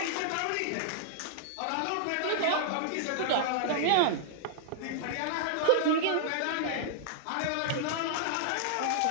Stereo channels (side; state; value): both; different; correlation -0.01